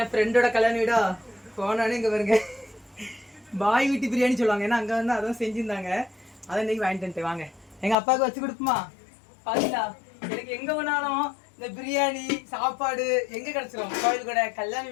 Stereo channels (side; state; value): right; drops out; at 8.0 s